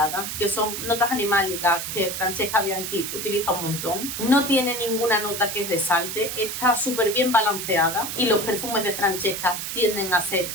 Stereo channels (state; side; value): noise; right; hiss, 5 dB below the sound